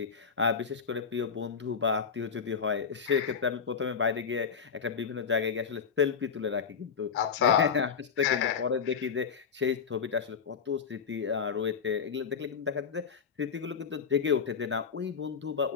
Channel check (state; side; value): quieter; right; 6.4 dB